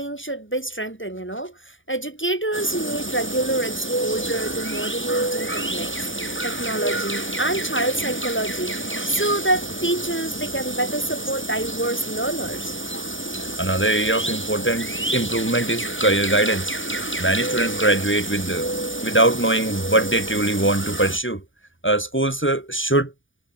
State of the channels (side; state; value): right; late; 0.57 ms